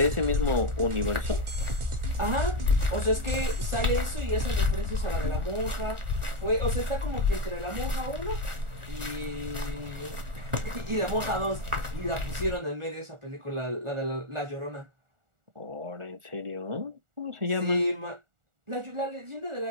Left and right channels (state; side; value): late; left; 1.4 ms